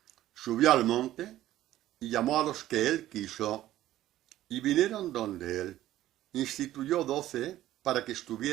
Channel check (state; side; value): quieter; left; 14.0 dB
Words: Subió al monte y llamó a los que él quiso y vinieron donde él. Instituyó 12 para que